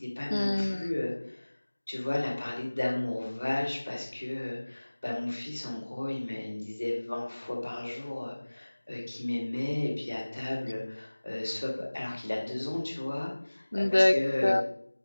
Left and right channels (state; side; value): inverted; both; correlation -1.00